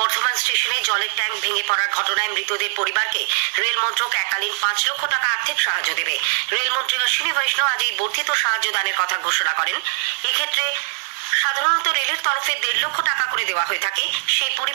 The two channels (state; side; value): silent; left; 60 dB below the other